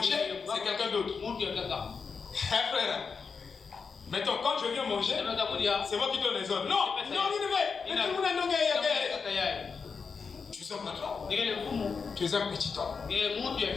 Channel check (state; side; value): quieter; right; 5.4 dB